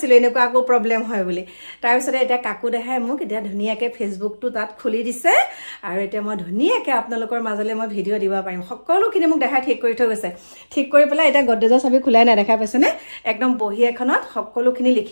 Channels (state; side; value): inverted; both; correlation -1.00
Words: এনেকুৱা আকৌ প্ৰব্লেম হয় বুলি তাৰপিছতে এতিয়া কাকু দেখাই মোক এতিয়া ধুনীয়াকৈ ফেচবুকটো তাত খুলি দিছে আৰু এতিয়া মই ধুনীয়াকৈ আপোনালোকৰ মাজলৈ মই ভিডিঅ' দিব পাৰিম সকলোখিনি মোক দেখাই ঠিক কৰি থৈ গৈছে ঠিক কৰি পেলাই এতিয়া গডৰেজৰ চাবি খোলাই নাই দেখা পাইছেনে একদম বহি এখনত সকলোখিনি